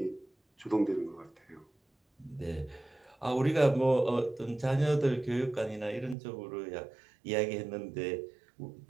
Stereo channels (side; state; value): left; drops out; at 6.2 s